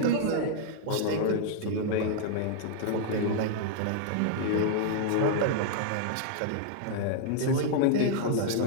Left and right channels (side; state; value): both; different; correlation -0.01